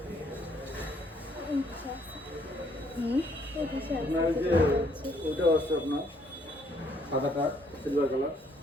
আপনার যে ওটা আছে আপনার সাদাটা silver colour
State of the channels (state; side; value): normal; both; correlation 0.67